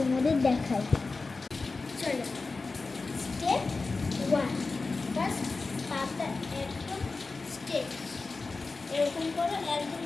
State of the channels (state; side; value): quieter; right; 3.9 dB